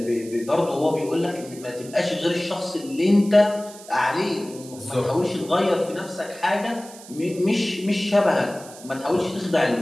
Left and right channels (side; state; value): right; noise; hiss, 18 dB below the sound